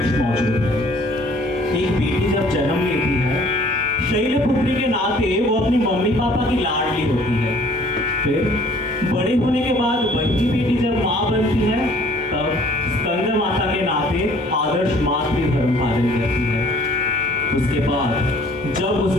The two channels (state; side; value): normal; both; correlation 0.56